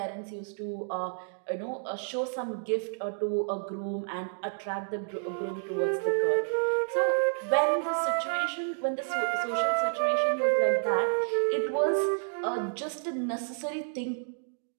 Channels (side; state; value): left; silent; digital silence